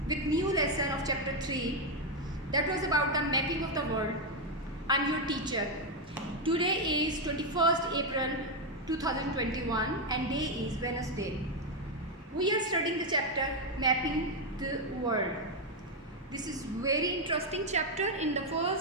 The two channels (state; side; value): normal; both; correlation 0.04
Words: with new lesson of chapter 3 that was about the mapping of the world. I'm your teacher. Today is 21st April 2021 and day is Wednesday. We are studying the chapter mapping the world. This is very interesting chapter. In the